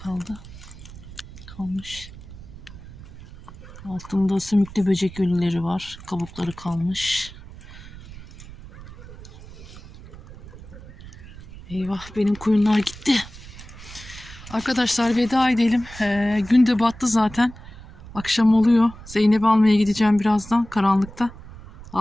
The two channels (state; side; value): noise; right; rumble, 16 dB below the sound